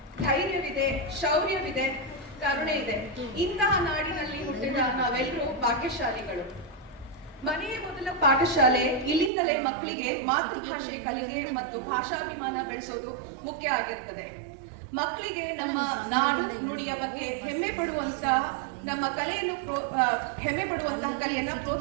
ಧೈರ್ಯವಿದೆ, ಶೌರ್ಯವಿದೆ, ಕರುಣೆ ಇದೆ. ಇಂತಹ ನಾಡಿನಲ್ಲಿ ಹುಟ್ಟಿದ ನಾವೆಲ್ಲರೂ ಭಾಗ್ಯಶಾಲಿಗಳು. ಮನೆಯ ಮೊದಲ ಪಾಠಶಾಲೆ. ಇಲ್ಲಿಂದಲೇ ಮಕ್ಕಳಿಗೆ ಮಾತೃಭಾಷೆ ಕಲಿಕೆ ಮತ್ತು ಭಾಷಾಭಿಮಾನ ಬೆಳೆಸೋದು ಮುಖ್ಯ ಆಗಿರುತ್ತದೆ. ಮಕ್ಕಳಿಗೆ ನಮ್ಮ ನಾಡು ನುಡಿಯ ಬಗ್ಗೆ ಹೆಮ್ಮೆ ಪಡುವಂತಹ ಕಲೆಯನ್ನ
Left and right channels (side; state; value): left; drops out; at 9.3 s